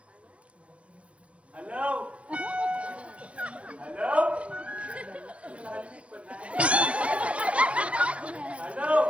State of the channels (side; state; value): left; late; 0.062 ms